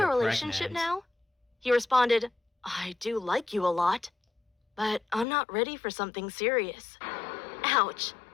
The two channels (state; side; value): drops out; right; at 5.2 s